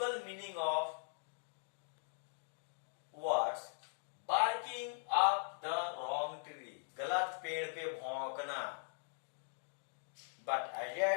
meaning of words. Barking up the wrong tree. गलत पेड़ पे भौंकना. But Ajay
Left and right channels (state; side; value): silent; right; digital silence